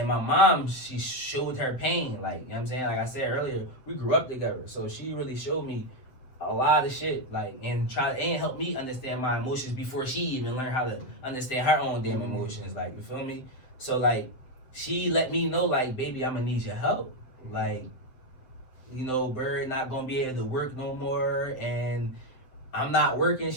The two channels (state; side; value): late; right; 7.8 ms